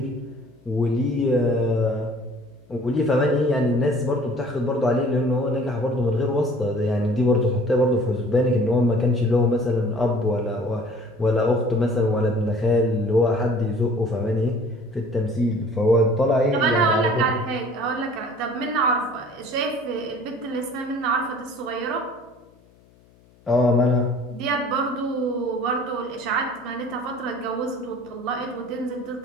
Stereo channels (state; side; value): noise; left; hum, 30 dB below the sound